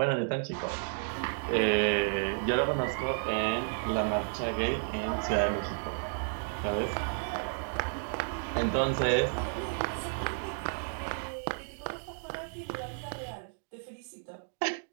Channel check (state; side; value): silent; left; digital silence